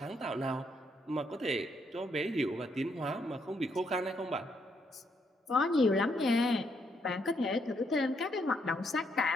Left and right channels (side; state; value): both; normal; correlation 0.75